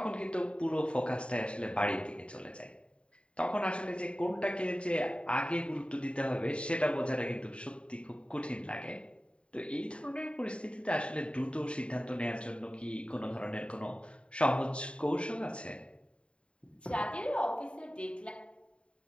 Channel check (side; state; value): right; late; 0.057 ms